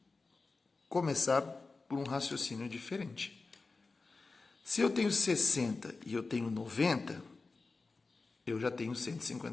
começar por um raciocínio diferente. Se eu tenho 60 e eu tenho 90, eu já tenho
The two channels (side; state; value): right; quieter; 3.9 dB